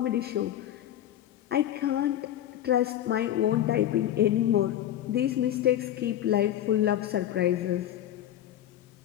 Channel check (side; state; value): right; quieter; 11.9 dB